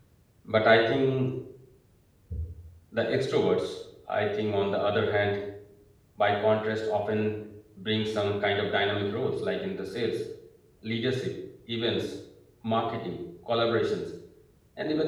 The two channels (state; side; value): identical; both; correlation 1.00